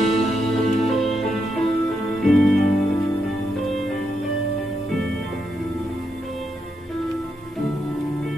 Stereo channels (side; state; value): both; normal; correlation 0.82